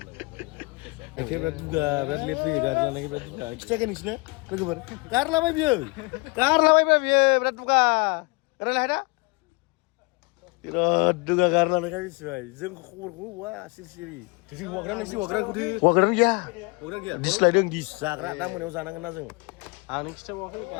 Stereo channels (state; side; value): quieter; right; 28.5 dB